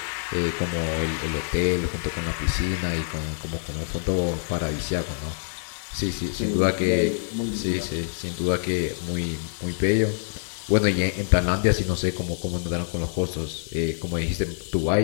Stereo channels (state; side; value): silent; right; digital silence